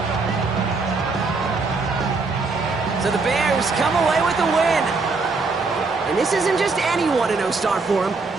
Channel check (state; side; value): quieter; left; 4.0 dB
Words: So the Bears come away with the win. And this isn't just any 1-0 start for them.